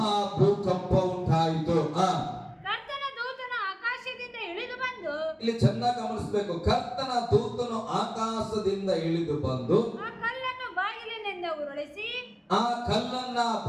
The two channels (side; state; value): both; identical; correlation 1.00